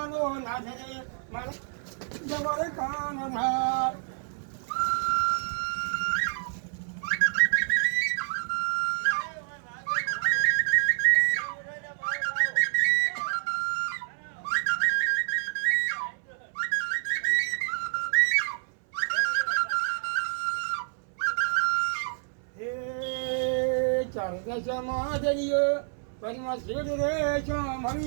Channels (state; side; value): silent; left; 58 dB below the other